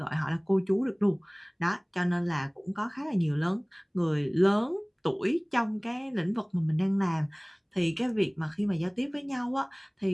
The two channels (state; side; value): identical; both; correlation 1.00